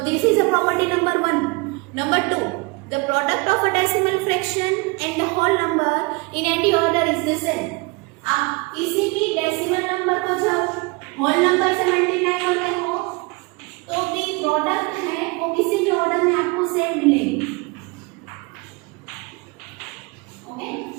this is a property number 1। Number 2, the product of a decimal fraction and the whole number in any order is the same. आप किसी भी डेसिमल नंबर को जब होल नंबर से मल्टीप्लाई करते हो तो भी प्रोडक्ट है वो किसी भी ऑर्डर में आपको सेम मिलेगी, ओके।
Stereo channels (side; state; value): left; quieter; 27.4 dB